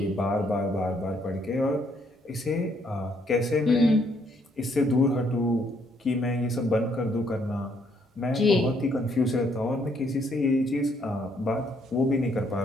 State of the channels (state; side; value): normal; both; correlation 0.69